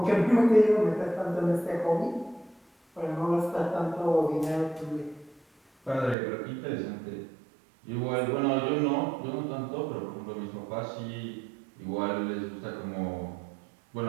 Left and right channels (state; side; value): drops out; left; at 6.2 s